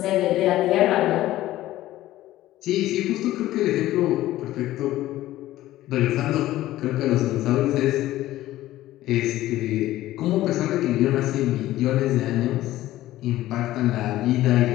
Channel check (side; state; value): right; quieter; 15.2 dB